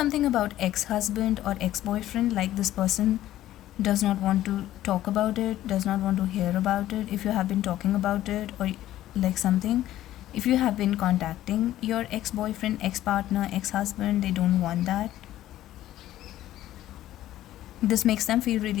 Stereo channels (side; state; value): right; quieter; 13.7 dB